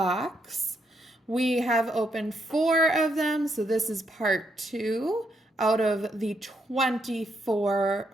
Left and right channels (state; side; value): normal; both; correlation 0.77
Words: We have opened 4 of them, so this is part 2 out of the